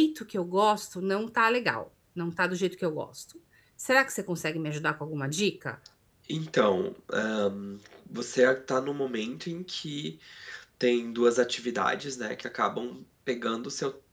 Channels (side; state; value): both; identical; correlation 1.00